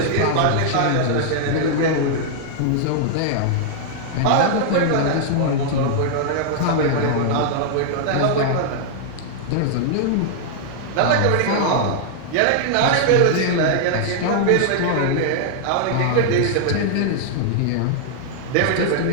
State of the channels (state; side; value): different; both; correlation -0.01